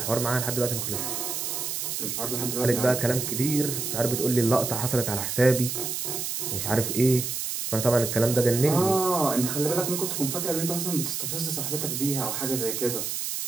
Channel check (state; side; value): noise; right; hiss, 3 dB below the sound